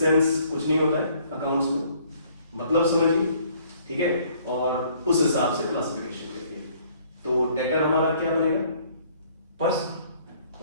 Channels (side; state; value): both; inverted; correlation -0.61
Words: सेंस कुछ नहीं होता है अकाउंट्स में. मतलब समझिए, ठीक है, और उस हिसाब से क्लासिफिकेशन करिए. तो डेटर हमारा क्या बनेगा, personal.